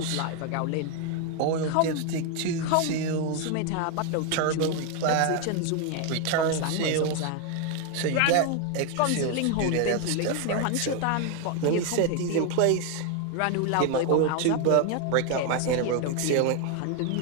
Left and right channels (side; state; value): both; different; correlation 0.01